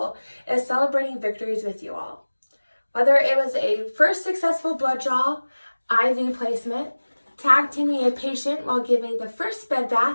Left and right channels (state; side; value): inverted; both; correlation -1.00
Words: is celebrating victories with you all. Whether it was a first successful blood draw, IV placement, tag teaming a patient while giving the first bed